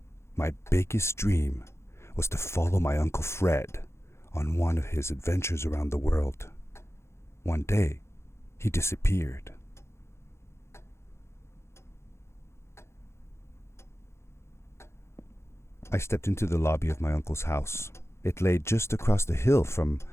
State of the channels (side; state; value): right; late; 0.13 ms